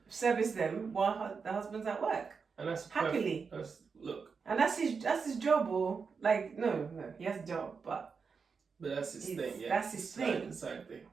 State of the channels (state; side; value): quieter; left; 5.4 dB